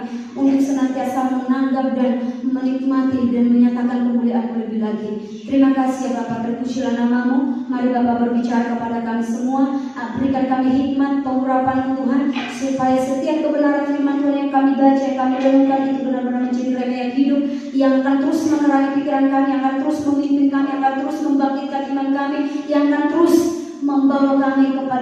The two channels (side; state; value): both; identical; correlation 1.00